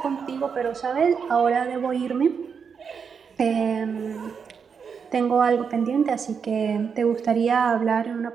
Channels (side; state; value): left; quieter; 6.3 dB